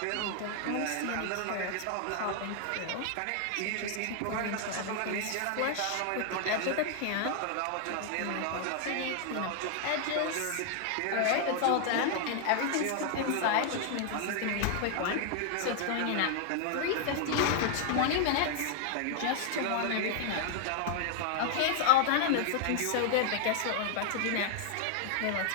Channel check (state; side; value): different; both; correlation 0.00